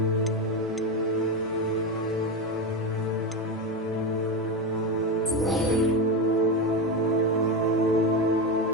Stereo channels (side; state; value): both; normal; correlation 0.15